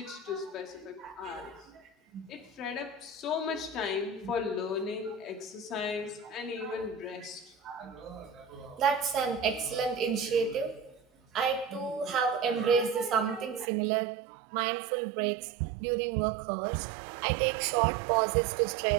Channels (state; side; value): drops out; left; at 13.7 s